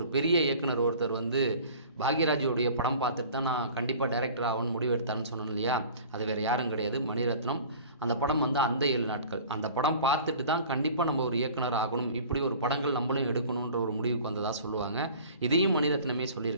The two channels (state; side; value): inverted; both; correlation -0.44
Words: பெரிய இயக்குனர் ஒருத்தர் வந்து பாக்யராஜுடைய படம் பார்த்துட்டு தான் நான் கண்டிப்பாக டைரக்டர் ஆகணும்னு முடிவு எடுத்தான்னு சொன்னேன் இல்லையா, அது வேறு யாரும் கிடையாது, மணிரத்னம். அந்த படம் வந்து அந்த 7 நாட்கள், அந்த படம் பார்த்துட்டு தான் கண்டிப்பாக நம்ம ஒரு இயக்குனர் ஆகணும், இப்படி ஒரு படங்கள் நம்மளும் எடுக்கணுன்ற ஒரு முடிவுக்கு வந்ததாக சொல்லுவாங்க. இதையும் மணிரத்னமே